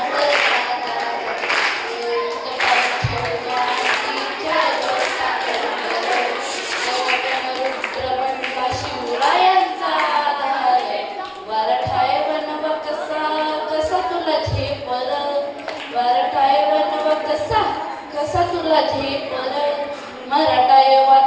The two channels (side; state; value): both; identical; correlation 1.00